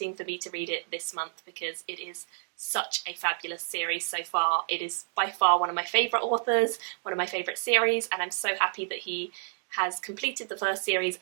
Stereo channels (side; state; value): left; silent; digital silence